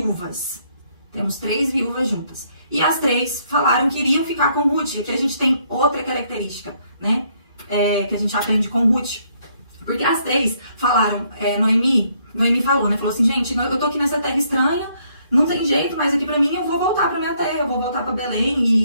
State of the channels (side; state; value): both; inverted; correlation -0.70